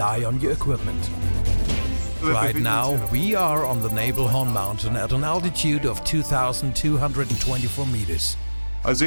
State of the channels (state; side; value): inverted; both; correlation -1.00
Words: on your equipment. Right now, we are on the Nebelhorn mountain at an altitude of 2,224 meters. For